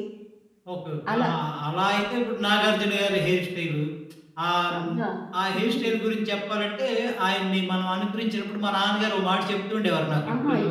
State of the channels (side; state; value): both; identical; correlation 1.00